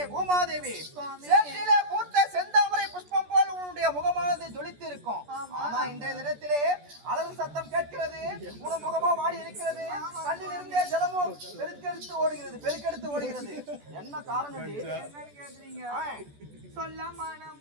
பூமாதேவி, சேற்றிலே பூத்த செந்தாமரை புஷ்பம் போல் உன்னுடைய முகமானது ஜொலித்து இருக்கும். ஆனா இன்றைய தினத்திலே அலறு சத்தம் கேட்கிறது. உன் முகமோ வாடி இருக்கிறது. கண்ணிலிருந்தே ஜலமோ பெருக்கெடுத்து ஓடுகிறது. என்ன காரணம் கேக்குறீங்க? சொல்ல மனம்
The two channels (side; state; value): left; late; 14 ms